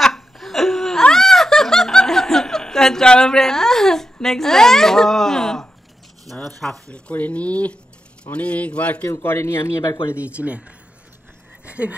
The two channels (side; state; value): both; normal; correlation 0.87